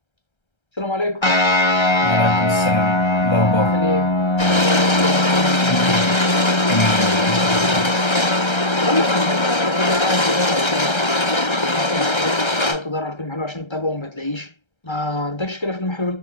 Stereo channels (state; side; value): late; right; 1.3 ms